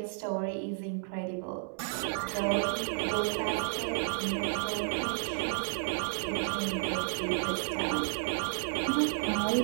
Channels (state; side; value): silent; left; 56 dB below the other